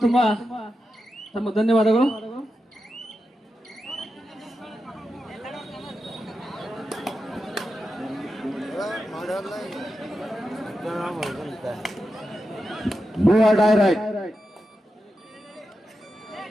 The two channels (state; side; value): normal; both; correlation 0.89